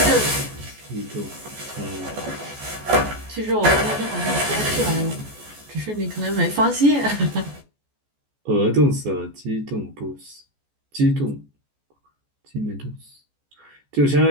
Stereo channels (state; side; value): late; left; 14 ms